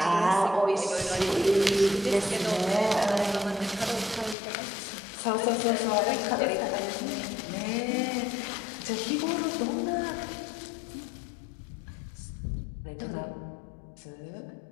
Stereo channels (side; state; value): right; drops out; at 4.4 s